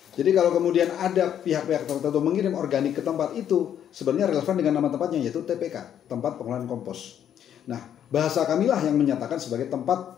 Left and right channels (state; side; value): quieter; right; 9.7 dB